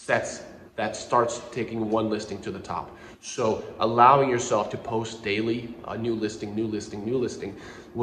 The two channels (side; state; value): both; identical; correlation 1.00